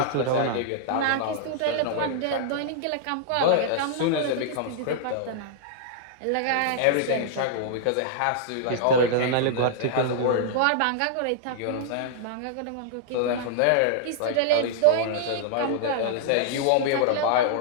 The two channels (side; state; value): both; different; correlation -0.01